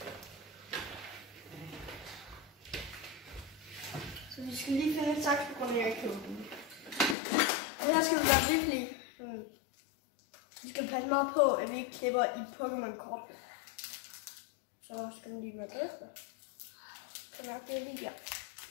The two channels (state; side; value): drops out; right; at 7.2 s